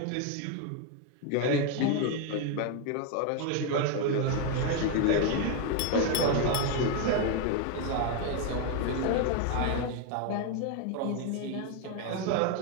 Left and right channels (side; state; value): both; different; correlation 0.01